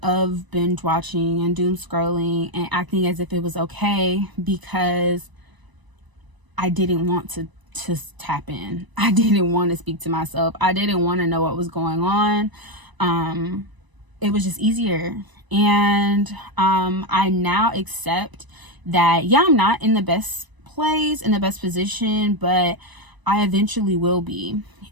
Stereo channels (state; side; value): late; left; 1.0 ms